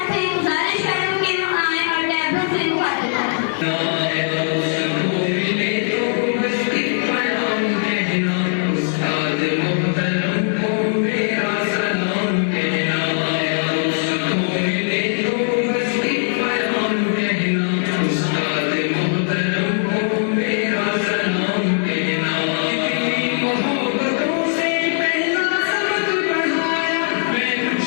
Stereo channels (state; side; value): silent; right; digital silence